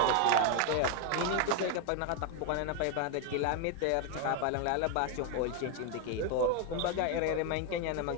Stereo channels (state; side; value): different; both; correlation 0.01